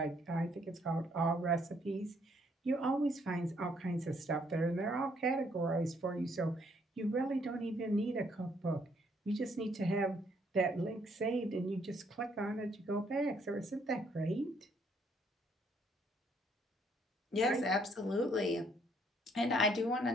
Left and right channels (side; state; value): both; normal; correlation 0.67